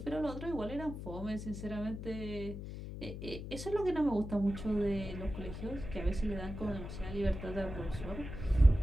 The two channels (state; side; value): noise; left; hum, 8 dB below the sound